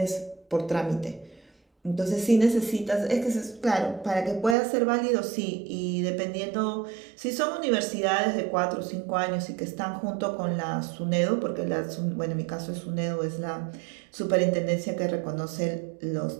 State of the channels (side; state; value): left; drops out; at 4.5 s